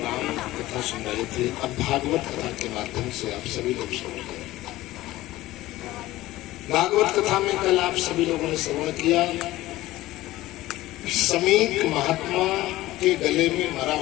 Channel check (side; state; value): right; quieter; 16.8 dB